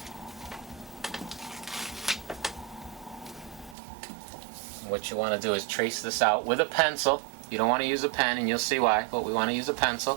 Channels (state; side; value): drops out; left; at 3.8 s